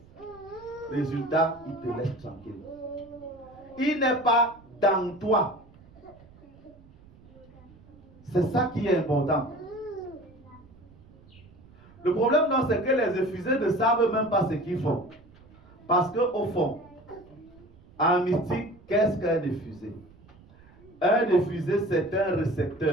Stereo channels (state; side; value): noise; right; rumble, 24 dB below the sound